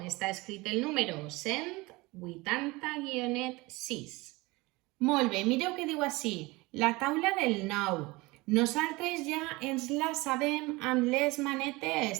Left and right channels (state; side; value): quieter; left; 22.8 dB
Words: està escrit el número 180-6. Molt bé, mireu què diu així, la taula del 9. Nosaltres ja ens la sabem amb les